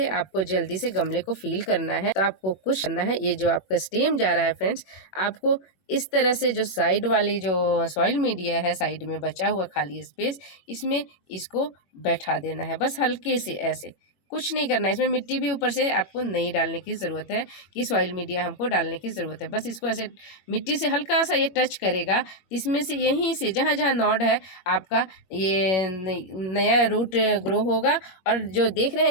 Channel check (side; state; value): right; late; 21 ms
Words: आपको जल्दी से गमले को फील करना है, तो आपको कुछ करना है, ये जो आपका स्टेम जा रहा है फ्रेंड्स, आपको इस तरह से जो साइड वाली जो सॉइल मीडिया है, साइड में बचा हुआ खाली स्पेस, इसमें इसको बैठा देना है, बस हल्के से ऐसे, कुछ नहीं करना है। इसमें मिट्टी भी ऊपर से आपको नहीं डालने की ज़रूरत है कि सॉइल मीडिया हमको डालने की ज़रूरत है, बस इसको ऐसे मिट्टी से हल्का सा ये टच करेगा, इसमें से यहीं से जहाँ जहाँ नॉड है आपका ये नया रूट ग्रो होगा। और जो देख रहे